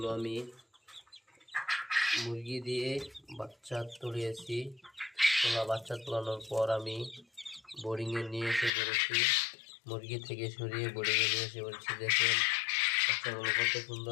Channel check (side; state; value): right; drops out; at 8.7 s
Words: আমি মুরগি দিয়ে বাচ্চা তুলিয়েছি। বাচ্চা তোলানোর পর আমি বোর্ডিংয়ে নিয়ে এসে পড়েছি। মুরগি থেকে সরিয়ে বোর্ডিংয়ে নিয়ে এসে পড়েছি। দেখেন বাচ্চাগুলো কত